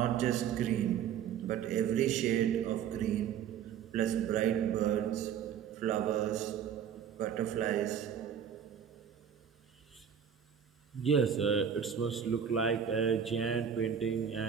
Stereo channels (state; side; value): quieter; left; 8.3 dB